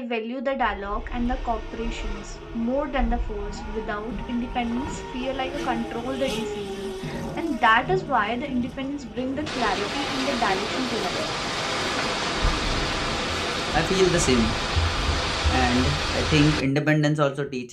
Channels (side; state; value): both; identical; correlation 1.00